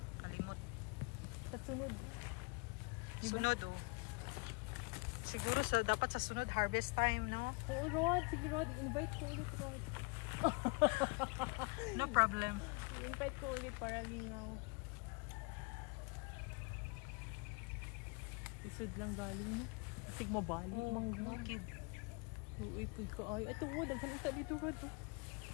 kalimot. Sa sunod. Sunod oh. Siguro dapat sa sunod harvest time, no? Oo, Rod. Sige, Rod. Invite ko ulit, Rod. No problem. Invite ko ulit para lingaw. Isod lang galing, no? Isig mabalik. Oh, okay. Uipod ka ay. Ito, Rod. Ang kanita dito, Rod.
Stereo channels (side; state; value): right; quieter; 30.1 dB